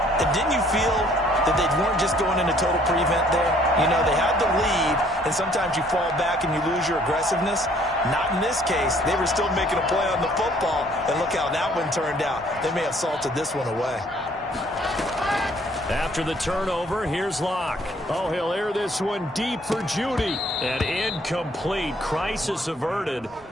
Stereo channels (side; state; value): both; normal; correlation 0.60